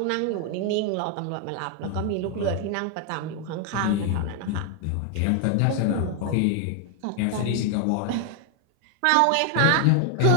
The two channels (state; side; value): different; both; correlation 0.00